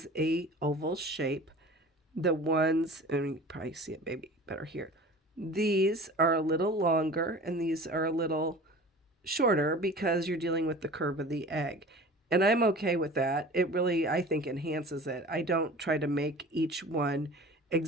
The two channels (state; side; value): normal; both; correlation 0.40